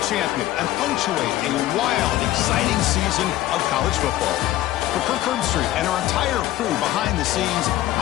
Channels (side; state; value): right; quieter; 14.9 dB